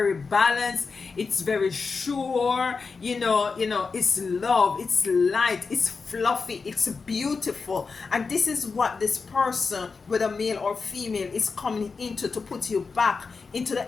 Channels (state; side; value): quieter; right; 4.7 dB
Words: balanced, it's very sure, it's love, it's light, it's fluffy, it's beautiful. And this is what this person, whether male or female, is coming into, to put you back into the